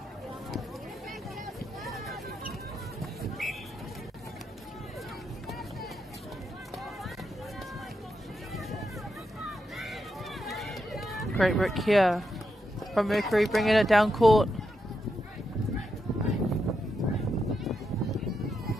Great work here from Mercury, bringing it down court.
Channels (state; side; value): normal; both; correlation 0.84